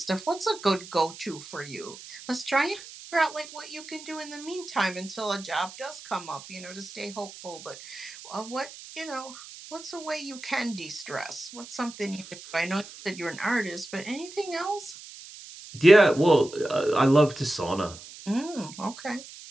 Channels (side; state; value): right; noise; hiss, 16 dB below the sound